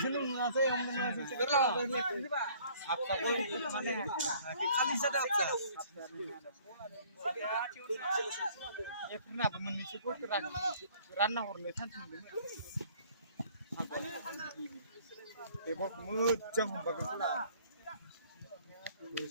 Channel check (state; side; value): inverted; both; correlation -0.57